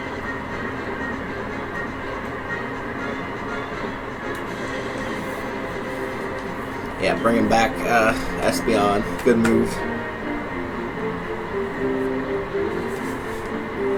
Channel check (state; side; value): identical; both; correlation 1.00